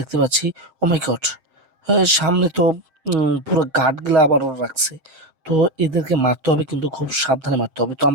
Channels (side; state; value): left; late; 7.6 ms